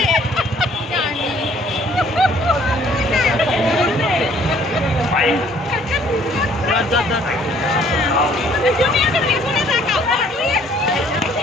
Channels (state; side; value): normal; both; correlation 0.59